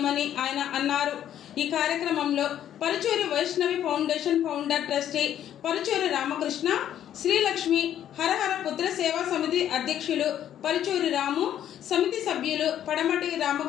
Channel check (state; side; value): quieter; right; 10.7 dB